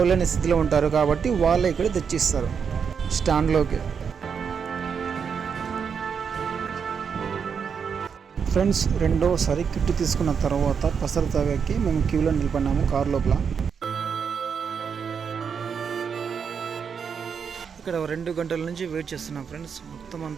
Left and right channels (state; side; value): quieter; left; 6.6 dB